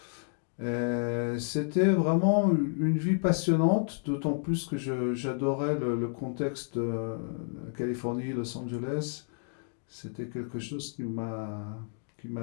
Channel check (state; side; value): silent; right; digital silence